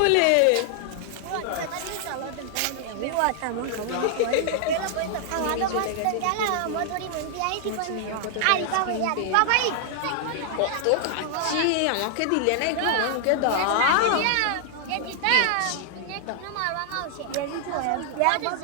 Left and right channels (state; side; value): different; both; correlation 0.00